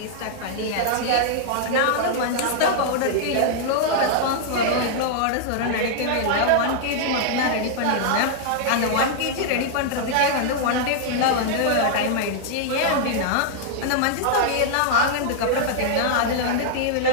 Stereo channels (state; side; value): different; both; correlation -0.01